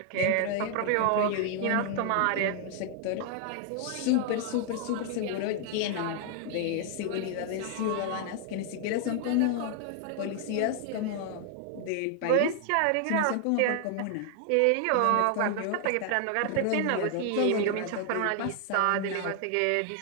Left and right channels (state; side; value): different; both; correlation 0.00